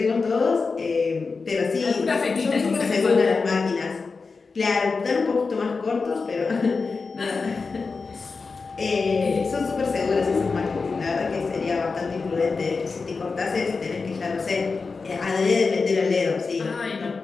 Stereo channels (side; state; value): right; quieter; 4.5 dB